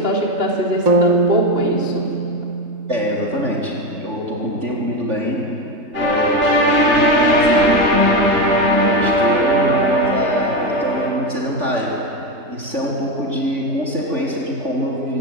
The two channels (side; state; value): left; late; 3.4 ms